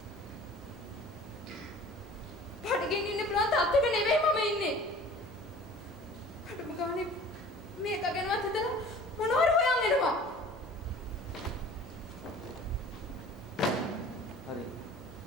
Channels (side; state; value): both; normal; correlation 0.45